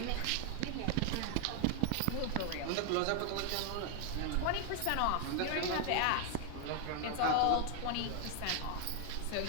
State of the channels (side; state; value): both; different; correlation 0.00